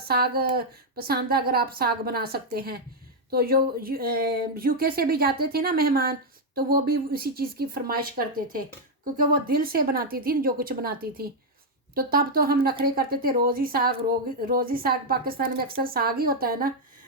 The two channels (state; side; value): normal; both; correlation 0.00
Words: पसंद है, अगर आप साग बना सकते हैं। तो जो यूके से भी जाते थे ना मेहमान, तो वो भी उसी चीज़ की फरमाइश करते थे, क्योंकि वो दिल से बनाती थी जो कुछ बनाती थी। तो तब तो हम नखरे करते थे, रोज़ ही साग, रोज़ ही साग, पाकिस्तान में अक्सर साग ही होता है ना।